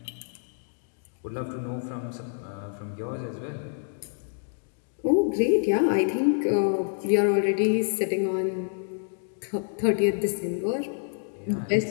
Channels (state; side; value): silent; right; digital silence